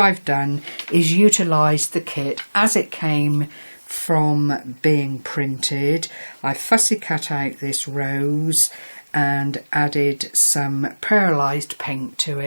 I've done is utilise the kit as it came from being printed. I fussy cut out this rose and added some pearlised paint to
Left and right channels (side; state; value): both; inverted; correlation -1.00